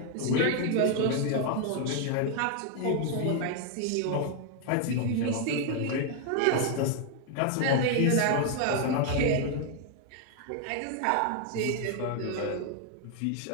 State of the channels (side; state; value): both; different; correlation 0.00